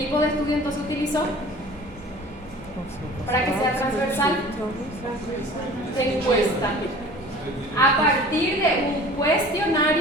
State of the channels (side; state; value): both; normal; correlation 0.44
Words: de estudio entonces utilizó? Para que sea transversal, encuesta. A partir de un